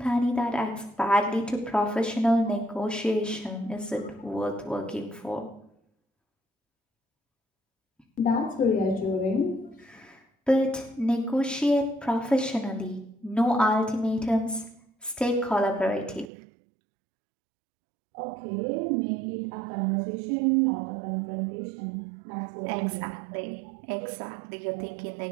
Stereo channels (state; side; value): drops out; left; at 16.2 s